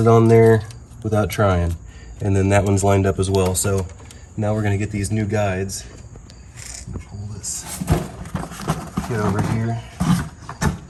on there without trying. And then that one's lined up as well. So now we're gonna get these new guides. Pull this, get over here.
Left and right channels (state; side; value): identical; both; correlation 1.00